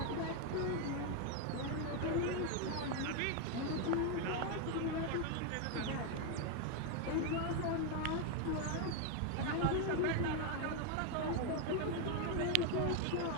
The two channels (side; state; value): both; different; correlation 0.01